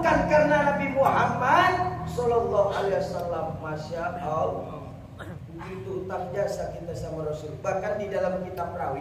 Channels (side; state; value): both; identical; correlation 1.00